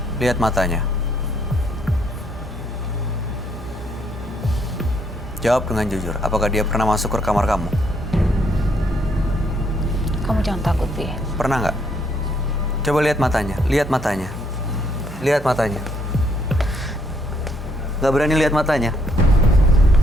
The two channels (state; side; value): normal; both; correlation 0.70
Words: lihat matanya. Jawab dengan jujur, apakah dia pernah masuk ke kamar kamu? Kamu jangan takut, Vi. Pernah nggak? Coba lihat matanya, lihat matanya. Lihat matanya. Nggak berani lihat matanya?